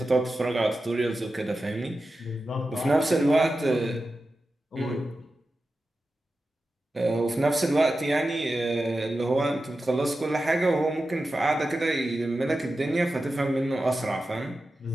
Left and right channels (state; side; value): normal; both; correlation 0.92